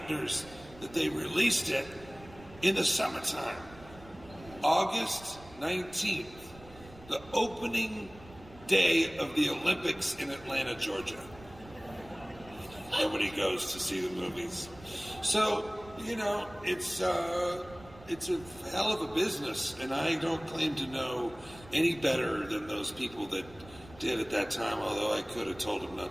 that they released it in the summertime. August 19th, the opening day of the Olympics in Atlanta, Georgia. Nobody goes to see the movies. So, you know, it's a hell of a business, and I don't claim to know any better than those people that did at that time, although I could have told them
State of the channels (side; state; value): right; noise; rumble, 20 dB below the sound